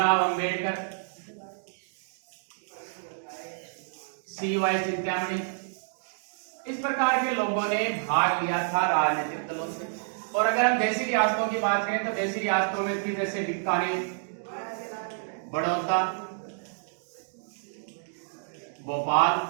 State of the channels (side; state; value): left; silent; digital silence